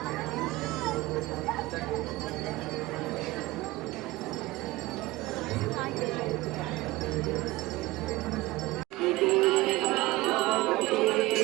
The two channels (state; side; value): quieter; left; 19.7 dB